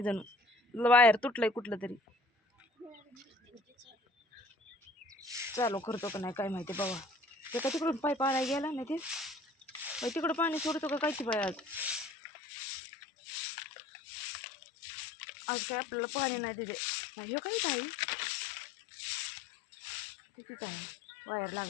जणू वायर तुटलंय कुठलं तरी. चालू करतो का नाही काय माहिती बाबा. ते का तिकडून पाईप आणायला गेला नाही ते तिकडं पाणी सोडतो का काय की बाय. आज काय आपल्याला पाणी नाही तिथे. हे काहीच आहे तिथेच आहे, वायर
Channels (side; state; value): right; drops out; at 12.1 s